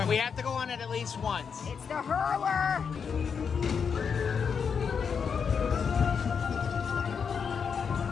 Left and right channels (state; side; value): quieter; right; 6.4 dB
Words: we have to go on it at least once. It's the hurler.